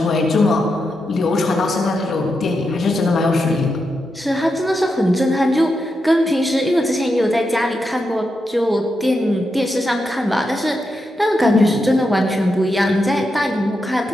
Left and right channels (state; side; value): normal; both; correlation 0.86